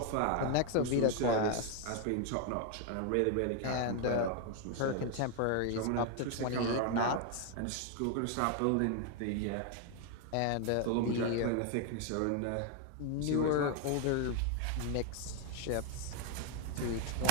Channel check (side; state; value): both; different; correlation 0.00